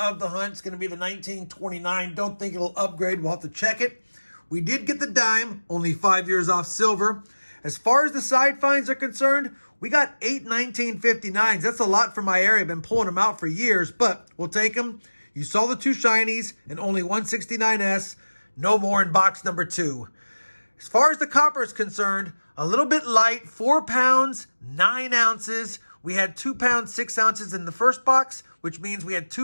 the hunt. It's going to be the 1929. Don't think it'll upgrade. We'll have to check it. We did get the dime, only 5 years off silver. As far as the side finds are concerned, we got 8 1959s. That's a lot for my area. I've been pulling them out for years, but we'll take them. You saw the 2 shinies and only 169S. No more in box number 2. As far as the copper is concerned, a little bit light, 4 pounds, 9 ounces. We had 2 pounds, 6 ounces in the first box, which means we had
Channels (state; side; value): inverted; both; correlation -1.00